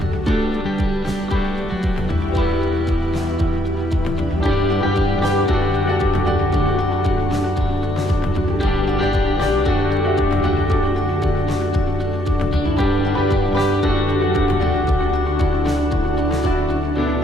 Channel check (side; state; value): both; normal; correlation 0.71